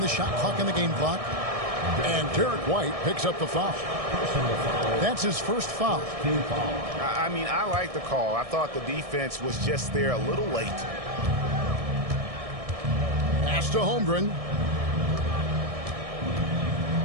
shot clock and the game clock. And Derek White picks up the foul. That's his first foul. I mean, I like the call. I thought the defense was just there a little late. Pass to Holmgren.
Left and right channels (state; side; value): late; left; 1.6 ms